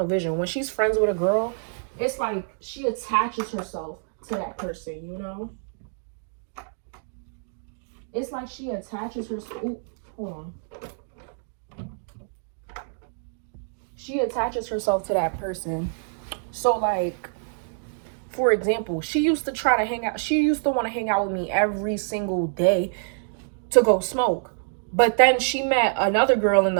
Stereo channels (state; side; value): silent; left; digital silence